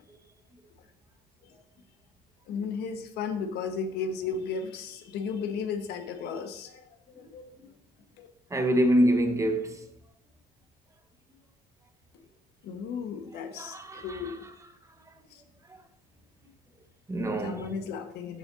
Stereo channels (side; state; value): both; normal; correlation 0.68